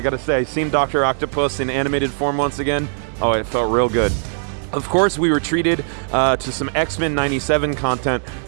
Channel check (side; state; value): left; silent; digital silence